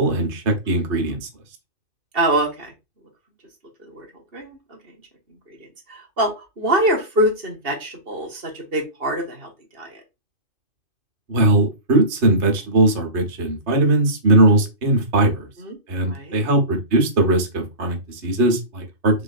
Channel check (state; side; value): late; left; 2.5 ms